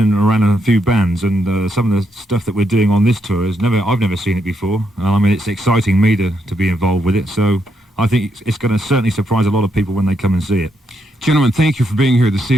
and around a few bands, and some of the stuff that we're doing on this tour I've never seen it before. I mean, it's exciting me to be involved with it, so I think it's going to certainly surprise a lot of people when they come and see it. Gentlemen, thank you for being here this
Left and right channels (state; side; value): normal; both; correlation 0.79